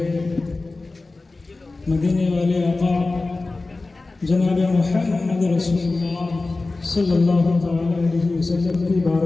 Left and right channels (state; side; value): quieter; right; 3.4 dB